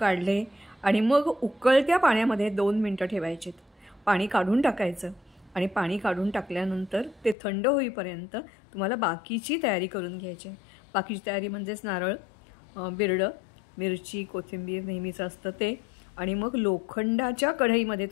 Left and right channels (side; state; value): right; drops out; at 7.4 s